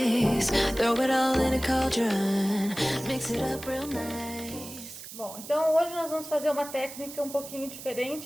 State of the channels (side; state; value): right; noise; hiss, 13 dB below the sound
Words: Throw it all in a cauldron, mix it up real nice. Bom, então hoje nós vamos fazer uma técnica um pouquinho